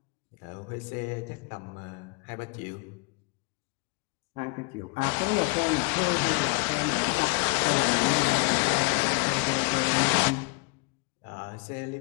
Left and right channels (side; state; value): right; quieter; 31.9 dB